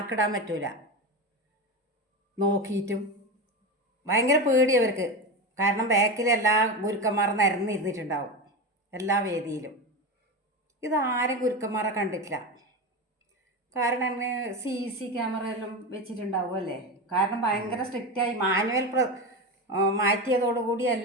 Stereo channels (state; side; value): normal; both; correlation 0.20